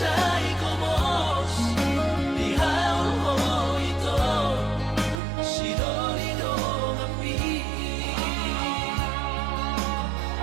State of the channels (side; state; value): left; drops out; at 5.2 s